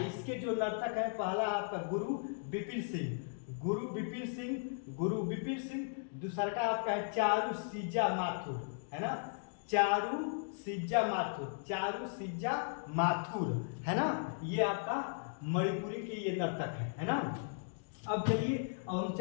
जो नर्तक है पहला आपका गुरु बिपिन सिंह, दूसरा का आपका है चारू सिज्जा माथुर, है ना। ये आपका मणिपुरी की ये नर्तक है ना। अब चलिए हम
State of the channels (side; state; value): right; silent; digital silence